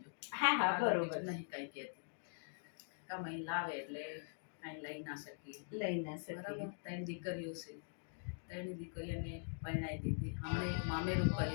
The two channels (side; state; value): right; silent; digital silence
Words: જો. હા હા, બરોબર. નહીં કાંઈ કહેતી. કમાઈ લાવે એટલે કાંઈ લઈ ના શકીએ. લઈ ના શકીએ. બરાબર. 3 દીકરીઓ છે, 3 દીકરીઓને પરણાવી દીધી. હમણાં એક મામેરું